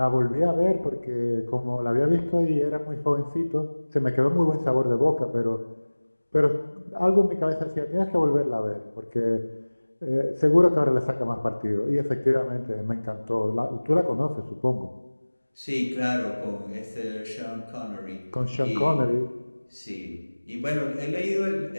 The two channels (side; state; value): both; inverted; correlation -1.00